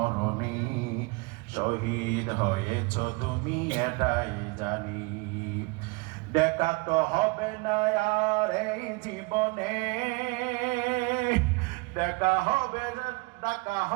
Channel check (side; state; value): left; quieter; 26.3 dB